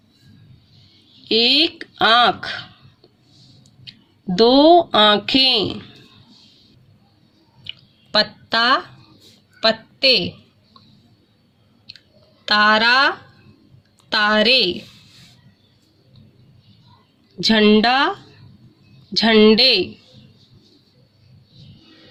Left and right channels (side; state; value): both; identical; correlation 1.00